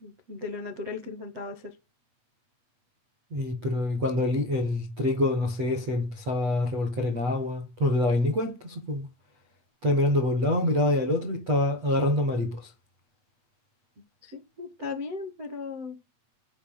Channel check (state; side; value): late; left; 8.2 ms